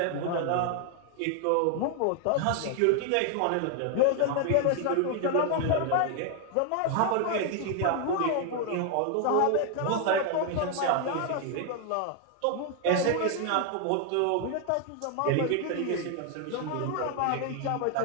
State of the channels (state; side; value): different; both; correlation 0.00